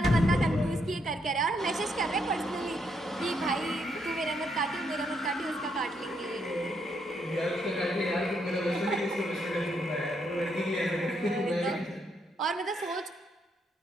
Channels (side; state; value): both; normal; correlation 0.76